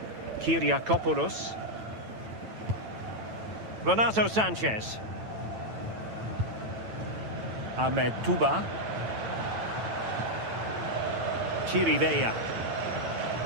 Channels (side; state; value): left; late; 9.0 ms